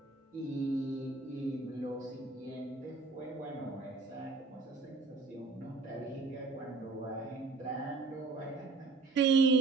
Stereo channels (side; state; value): left; quieter; 3.9 dB